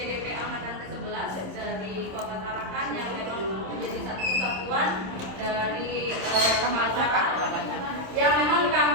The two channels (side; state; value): left; late; 27 ms